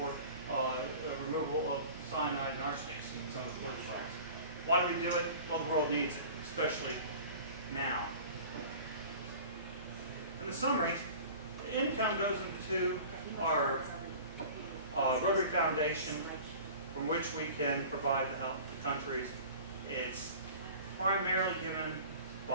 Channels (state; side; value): inverted; both; correlation -0.42